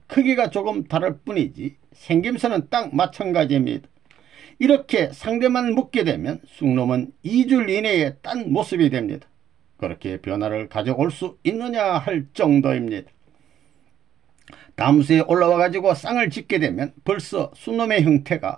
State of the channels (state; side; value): quieter; left; 10.5 dB